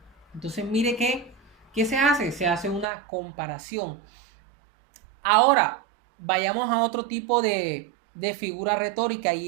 Entonces mire ¿qué se hace? Se hace una comparación. Ahora, vayamos a otro tipo de figura retórica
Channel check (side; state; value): left; drops out; at 2.9 s